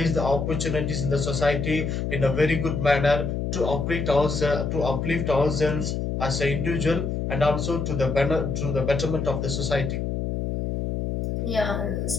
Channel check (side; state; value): left; noise; hum, 2 dB below the sound